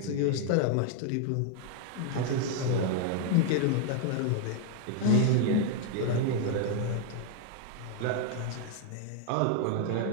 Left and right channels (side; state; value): both; different; correlation 0.00